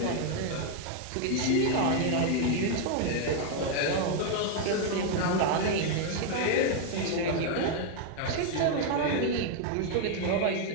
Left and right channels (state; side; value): different; both; correlation 0.01